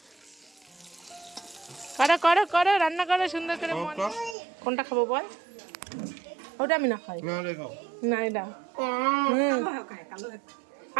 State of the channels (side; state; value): left; drops out; at 4.4 s